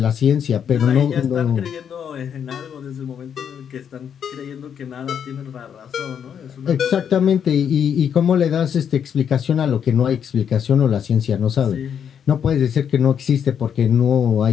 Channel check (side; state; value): right; quieter; 8.1 dB